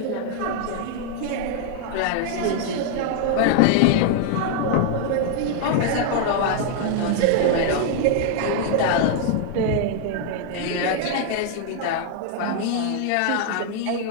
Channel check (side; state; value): both; different; correlation 0.00